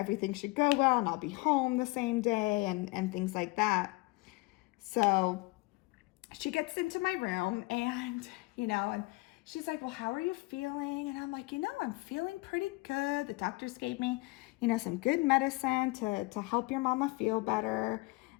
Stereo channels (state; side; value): quieter; right; 23.8 dB